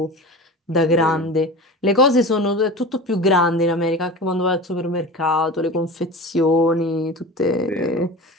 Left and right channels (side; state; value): both; normal; correlation 0.32